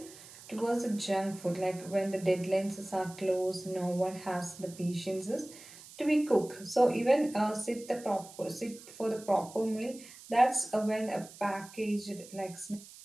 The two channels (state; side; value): noise; right; hiss, 18 dB below the sound